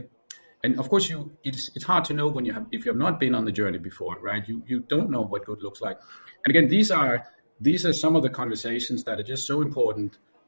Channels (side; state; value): both; inverted; correlation -1.00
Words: And of course, it's hard to know when if you have not been on the journey before, right? You don't know what good looks like. And again, these are some of the conversations that are just so important